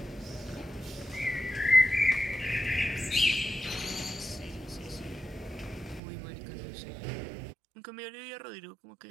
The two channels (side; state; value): left; drops out; at 6.0 s